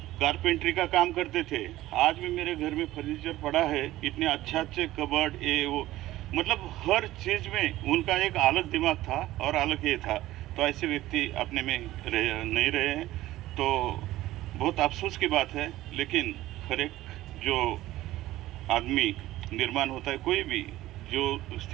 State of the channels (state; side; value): quieter; left; 15.9 dB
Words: कारपेंट्री का काम करते थे, आज भी मेरे घर में फर्नीचर पड़ा है, इतने अच्छे कबर्ड, ये वो, मतलब हर चीज़ में उनका एक अलग दिमाग था और अलग ये था। तो ऐसे व्यक्ति अपने में नहीं रहे हैं, तो बहुत अफसोस की बात है। लेकिन हर एक जो आदमी निर्माण होता है, कोई भी जो